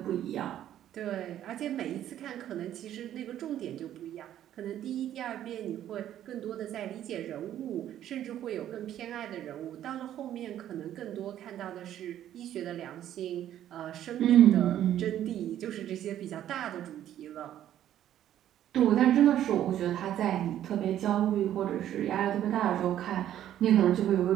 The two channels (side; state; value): left; quieter; 11.5 dB